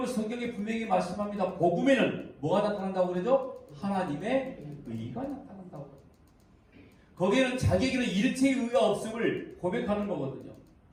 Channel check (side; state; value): both; identical; correlation 1.00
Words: 성경에 분명히 말씀합니다. 복음에는 뭐가 나타난다고 그러죠? 하나님의 의가 나타난다고. 거기에는 자기에게는 일체의 의가 없음을 고백하는 거거든요.